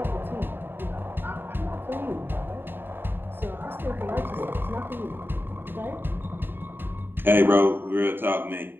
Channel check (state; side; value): late; left; 0.098 ms